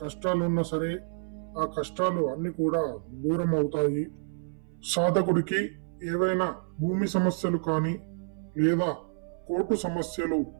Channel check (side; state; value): left; silent; 59 dB below the other